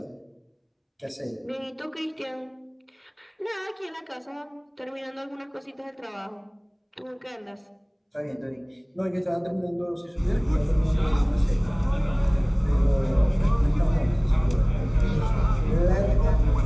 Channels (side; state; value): both; identical; correlation 1.00